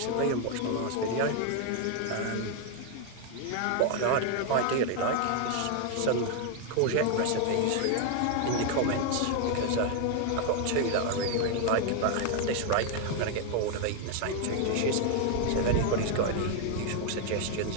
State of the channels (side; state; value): both; different; correlation 0.00